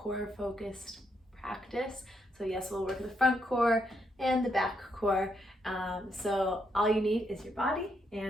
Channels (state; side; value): normal; both; correlation 0.78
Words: focused practice. So yes, we'll work the front core and the back core. So all you need is your body